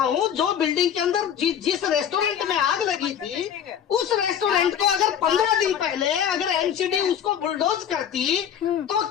हूँ, जो बिल्डिंग के अंदर जिस रेस्टोरेंट में आग लगी थी, उस रेस्टोरेंट को अगर 15 दिन पहले अगर एमसीडी उसको बुलडोज करती तो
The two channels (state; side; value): quieter; right; 8.9 dB